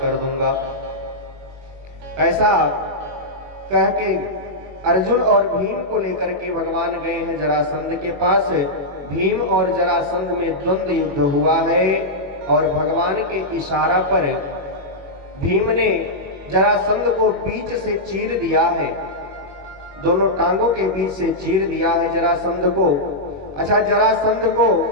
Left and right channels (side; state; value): left; late; 21 ms